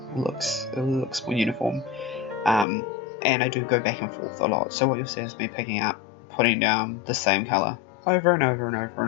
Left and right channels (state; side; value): drops out; right; at 2.7 s